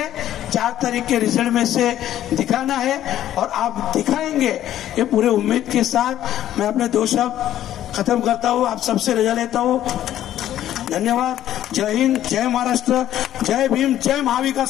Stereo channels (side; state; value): right; quieter; 12.1 dB